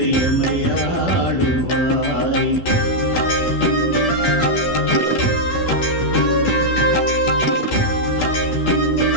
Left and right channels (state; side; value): late; right; 12 ms